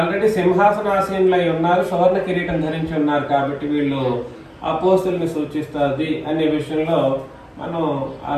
సింహాసనాసీనులై ఉన్నారు, సువర్ణ కిరీటం ధరించి ఉన్నారు. కాబట్టి వీళ్ళు అపోస్తుల్ని సూచిస్తుంది అనే విషయంలో మనం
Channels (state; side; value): identical; both; correlation 1.00